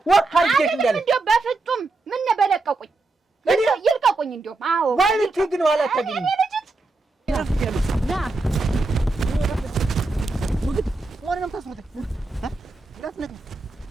ወካርጀሽ እንዳለ እንደው በፍጹም ምን በለቀቁኝ ይልቀቁኝ። እንደው አዎ ማለት ግን ዋላ ታገኝ እኔ ልጅት ና ወረንም ታስሩት ዳትነት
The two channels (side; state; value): left; quieter; 3.3 dB